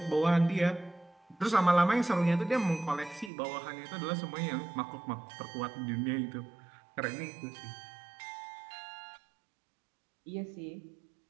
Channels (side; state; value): left; drops out; at 3.3 s